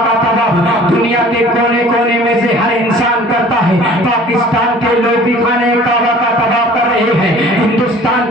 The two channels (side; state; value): both; normal; correlation 0.48